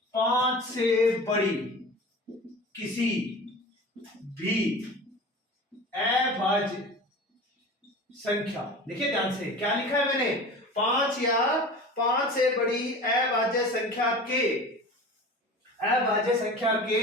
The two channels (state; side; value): normal; both; correlation 0.36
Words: 5 से बड़ी किसी भी अभाज्य संख्या, देखिए ध्यान से क्या लिखा है मैंने, 5 या 5 से बड़ी अभाज्य संख्या के